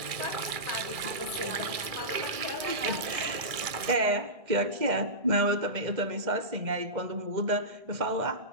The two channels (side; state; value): left; late; 1.6 ms